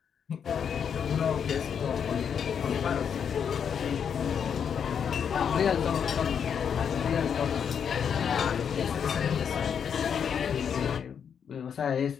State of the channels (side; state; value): right; quieter; 7.5 dB